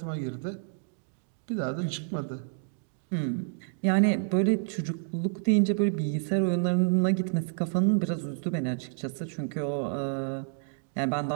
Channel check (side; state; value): left; silent; 58 dB below the other